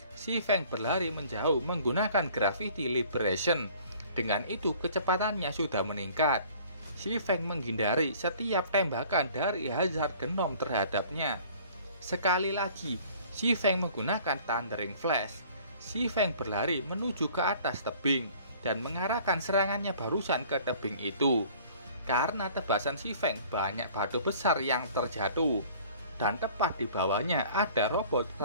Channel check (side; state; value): both; inverted; correlation -0.51